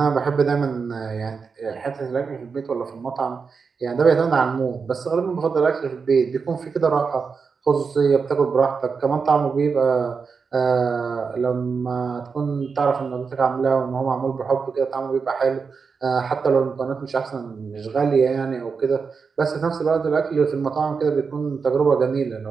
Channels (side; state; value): left; quieter; 5.3 dB